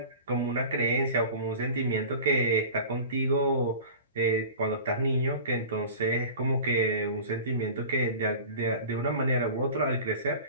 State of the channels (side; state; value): both; inverted; correlation -0.38